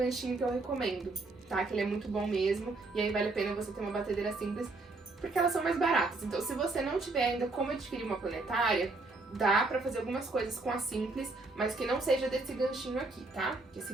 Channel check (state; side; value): quieter; left; 3.3 dB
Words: que eu recomendo, tá? Que ele é muito bom mesmo, e aí vale a pena você ter uma batedeira simples, porque elas são mais baratas. Então, se você não tiver ainda como adquirir uma planetária, dá pra fazer algumas coisas com a simples, mas que não seja desse ganchinho aqui, tá? Esse